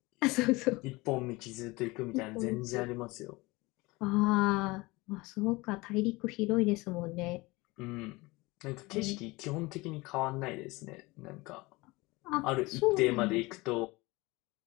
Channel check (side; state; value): right; quieter; 22.9 dB